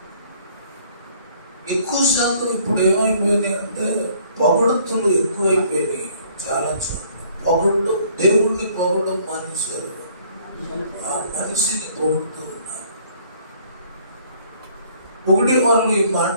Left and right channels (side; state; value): both; inverted; correlation -0.59